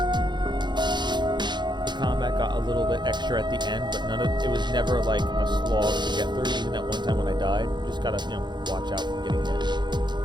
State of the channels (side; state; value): left; late; 0.21 ms